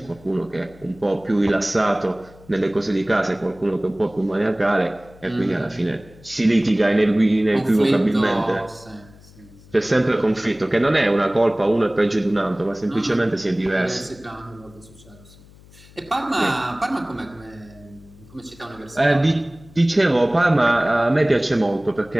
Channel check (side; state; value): left; noise; hum, 24 dB below the sound